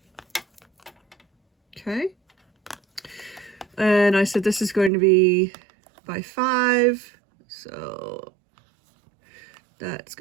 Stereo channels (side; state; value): left; drops out; at 4.9 s